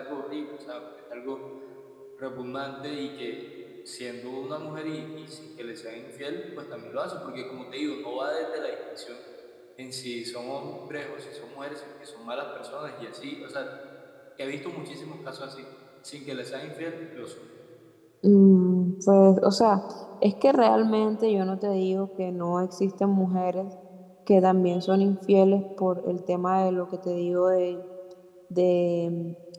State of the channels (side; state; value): both; identical; correlation 1.00